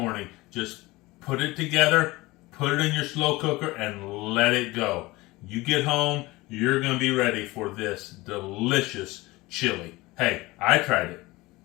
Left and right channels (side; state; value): right; quieter; 21.0 dB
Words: Just put it together, put it in your slow cooker, and let it go. You get home, you're going to be ready for this delicious chili. Hey, I tried it.